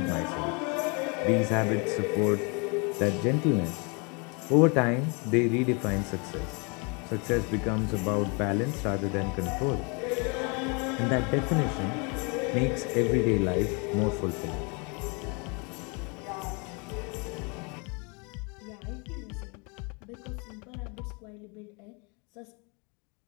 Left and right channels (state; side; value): quieter; right; 32.2 dB